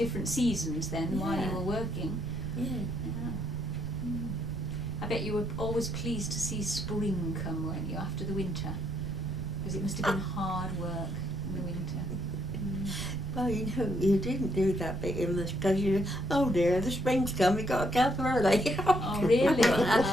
seasons then while you Yeah. were working. Yeah. Yeah. I bet you were always pleased to see spring come, weren't you, after the winter? Because it must have been hard work in the winter. Well, you know, you didn't do that bit in this because oh dear, the spring's come, we got to get up early. Oh, really?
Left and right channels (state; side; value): noise; right; rumble, 8 dB below the sound